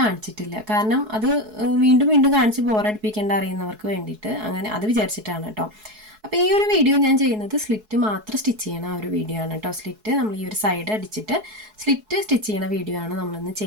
കാരണം അത് വീണ്ടും വീണ്ടും കാണിച്ച് ബോറടിപ്പിക്കേണ്ട അറിയുന്നവർക്ക് വേണ്ടിയിട്ട് അങ്ങനെ അത് വിചാരിച്ചിട്ടാണ് കേട്ടോ. അപ്പോൾ ഈ ഒരു വീഡിയോ ഞാൻ ചെയ്യുന്നത് സ്ലിറ്റ് മാത്രം സ്റ്റിച്ച് ചെയ്യണ ആ ഒരു വീഡിയോ ആണ് കേട്ടോ. സ്ലിറ്റ് നമ്മൾ ഈ ഒരു സൈഡ് അടിച്ചിട്ട് സ്ലിറ്റ് സ്റ്റിച്ച് ചെയ്യണ വീഡിയോ ആണ് നമ്മളിന്ന്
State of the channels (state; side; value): late; left; 4.7 ms